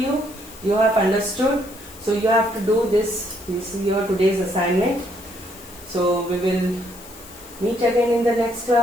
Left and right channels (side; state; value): left; noise; hiss, 19 dB below the sound